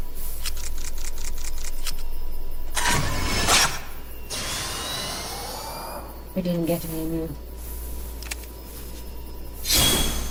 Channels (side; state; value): both; identical; correlation 1.00